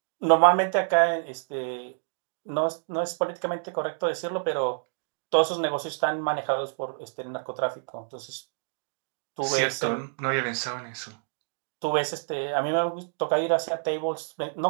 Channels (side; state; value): left; silent; digital silence